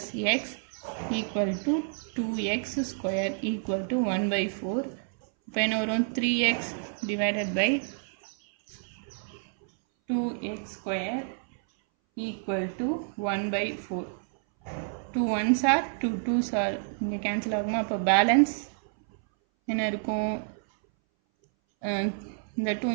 X equal to 2x square equal to 1/4. இப்போ என்ன வரும் 3x divided by 2x square equal to 1/4. 2 1s are 2 2s are இங்கே கேன்சல் ஆகுமா? அப்போ balance என்ன இருக்கும்? இந்த 2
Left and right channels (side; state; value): left; silent; 59 dB below the other